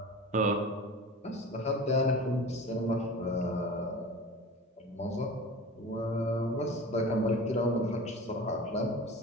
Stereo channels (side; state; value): both; normal; correlation 0.35